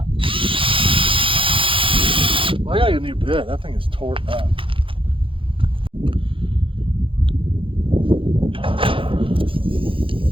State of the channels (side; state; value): left; late; 0.25 ms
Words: Well, I gotta get a new bit. That thing is tore up.